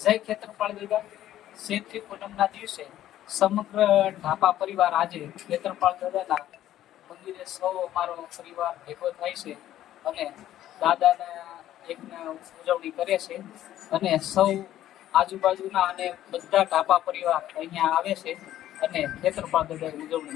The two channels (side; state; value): right; quieter; 12.7 dB